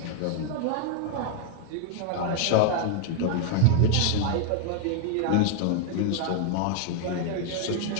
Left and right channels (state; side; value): different; both; correlation 0.00